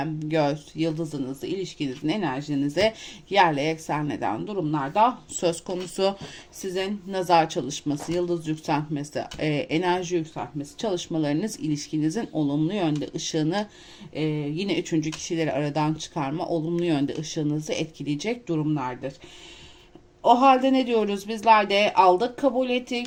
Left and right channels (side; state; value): both; identical; correlation 1.00